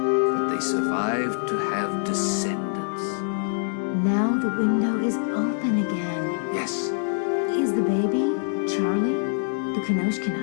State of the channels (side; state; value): right; silent; digital silence